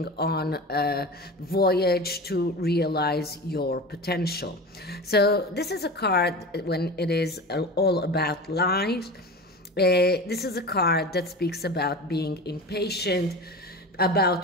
on a voyage to realize your potential. So this is a card when it is all about lies. This is a card that speaks about being impatient,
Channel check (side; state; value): both; normal; correlation 0.30